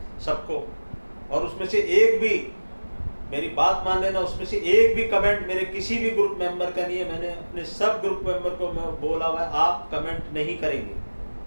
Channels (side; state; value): both; inverted; correlation -1.00